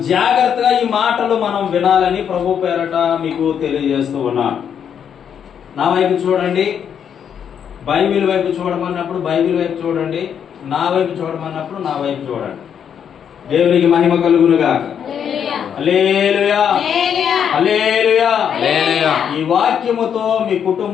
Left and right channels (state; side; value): quieter; right; 8.2 dB